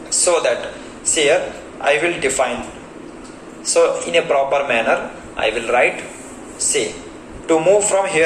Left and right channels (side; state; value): both; identical; correlation 1.00